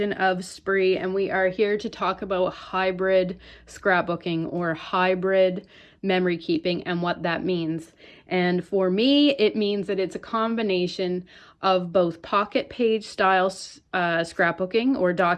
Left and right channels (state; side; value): identical; both; correlation 1.00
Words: of Spree, and we are here to talk about hybrid scrapbooking or hybrid memory keeping and what that means. And for me, it means that it's a combination of both pocket page style scrapbooking or